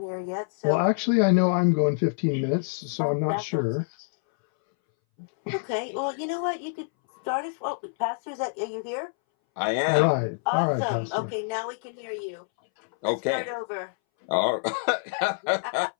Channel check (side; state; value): right; silent; 61 dB below the other